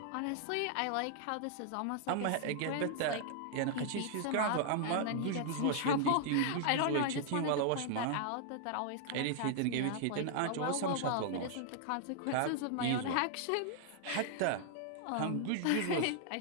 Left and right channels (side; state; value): both; different; correlation 0.00